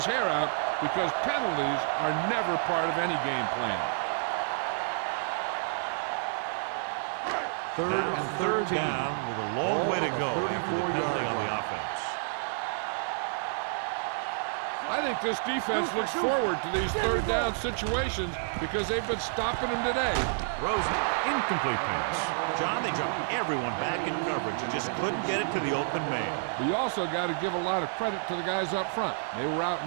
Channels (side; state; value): left; silent; digital silence